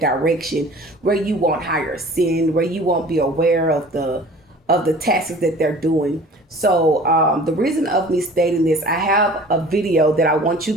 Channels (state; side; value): normal; both; correlation 0.46